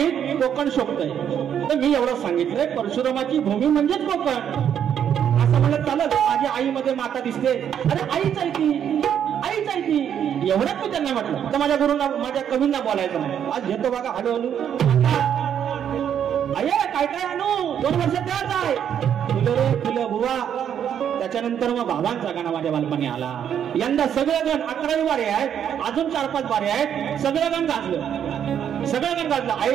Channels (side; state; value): left; quieter; 9.0 dB